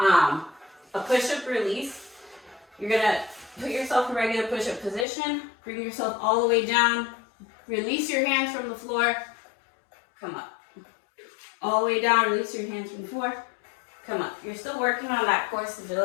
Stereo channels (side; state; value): right; drops out; at 5.1 s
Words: push-up release, you're gonna put yourself in a regular push-up position, bring yourself all the way down, release your hands from the floor, come up. All the way down, release your hands from the floor, come up. You're still working on that core